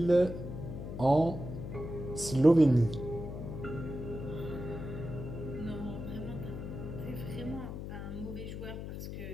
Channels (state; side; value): noise; left; hum, 7 dB below the sound